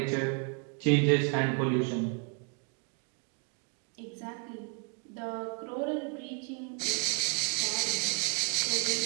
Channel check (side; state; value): left; quieter; 35.7 dB